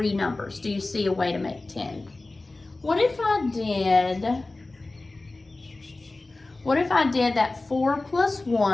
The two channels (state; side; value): quieter; right; 3.1 dB